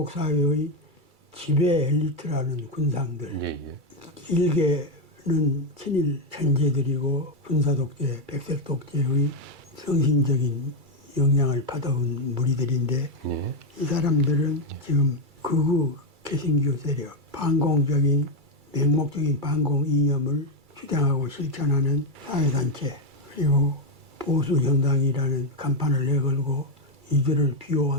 사회의 지배 엘리트라는 군상들, 예, 예. 일개는 친일 천재들이고 군사 독재, 백색 독재의 정신적인 영향을 받아온 무리들인데 예. 이 사람들은 지금 극우 개신교 세력, 반공적인 맹목적인 반공 이념을 주장하고 실천하는 사회단체, 그리고 보수 정당이라는 간판을 내걸고 이들을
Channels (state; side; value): late; left; 2.3 ms